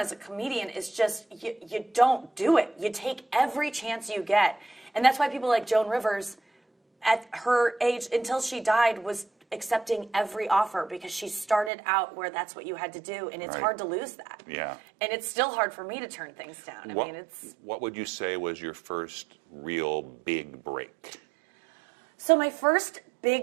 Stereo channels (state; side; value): drops out; left; at 11.7 s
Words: a comedian is just, you don't do it. You take every chance you get. And that's why people like Joan Rivers, at her age, until she died, was accepting every offer, because she started out where that's what you had to do, and it's hard to lose that. Yeah. And it's still hard for me to turn things down. What would you say was your first real big break? So my first